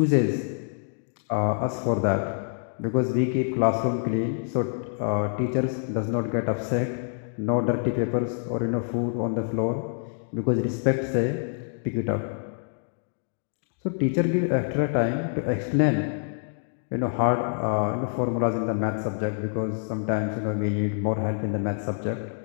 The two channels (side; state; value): right; silent; digital silence